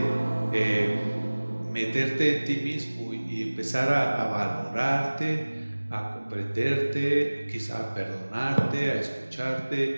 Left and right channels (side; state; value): both; inverted; correlation -1.00